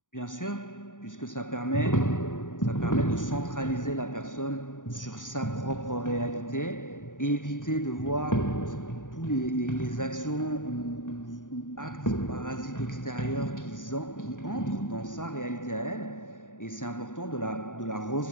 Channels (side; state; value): right; late; 0.88 ms